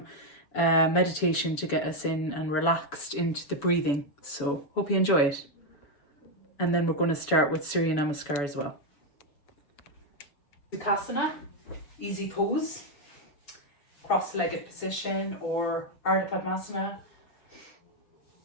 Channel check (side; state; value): right; late; 7.1 ms